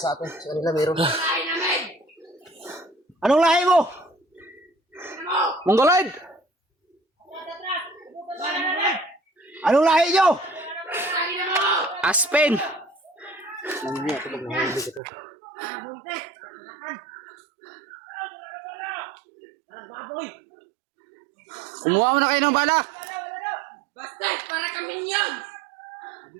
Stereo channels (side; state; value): left; drops out; at 15.0 s